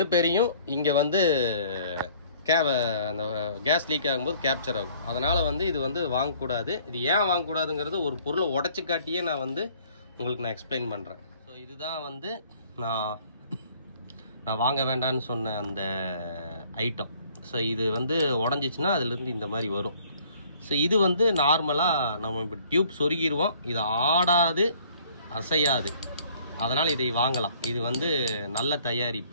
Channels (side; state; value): both; inverted; correlation -0.58